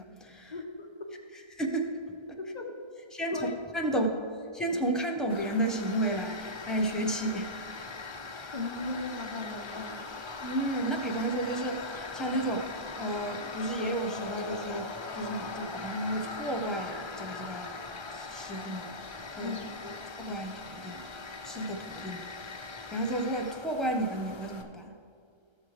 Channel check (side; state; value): left; late; 1.3 ms